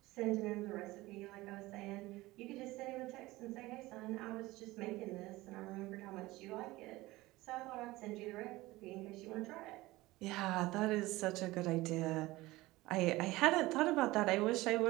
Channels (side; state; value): left; quieter; 19.3 dB